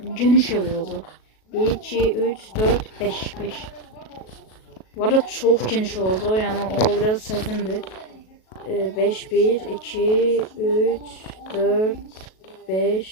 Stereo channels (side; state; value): right; late; 37 ms